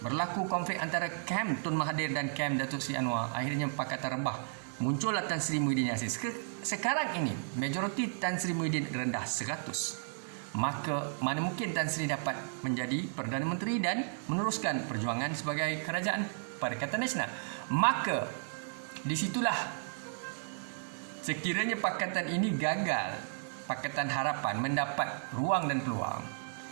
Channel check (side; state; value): left; silent; digital silence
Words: Berlaku konflik antara kem Tun Mahathir dan kem Datuk Seri Anwar. Akhirnya Pakatan rebah. Muncullah Tan Sri Muhyiddin Yassin. Sekarang ini majoriti Tan Sri Muhyiddin rendah 100. Maka mana mungkin Tan Sri dapat menjadi Perdana Menteri dan meneruskan perjuangan sebagai kerajaan Perikatan Nasional. Maka disitulah sekiranya pakatan ini gagal, Pakatan Harapan mendapat ruang dan peluang.